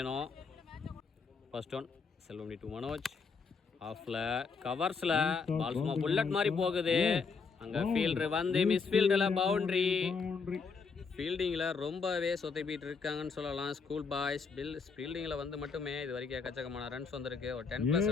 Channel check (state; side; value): quieter; right; 5.1 dB